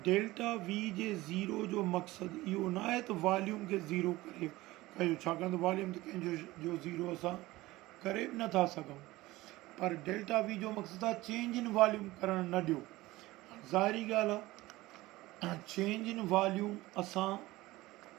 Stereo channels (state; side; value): quieter; left; 18.7 dB